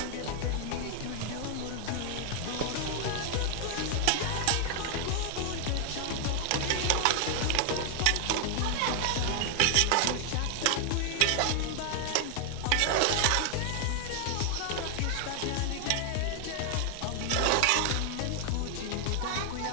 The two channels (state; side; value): different; both; correlation 0.00